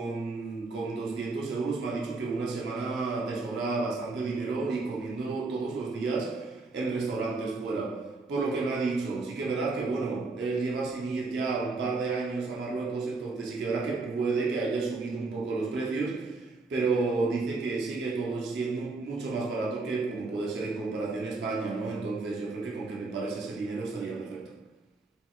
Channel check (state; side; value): quieter; left; 3.6 dB